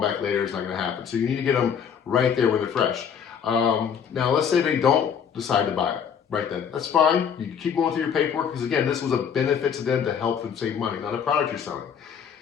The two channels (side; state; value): right; quieter; 7.5 dB